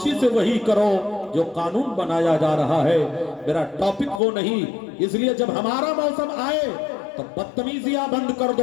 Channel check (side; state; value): right; drops out; at 4.2 s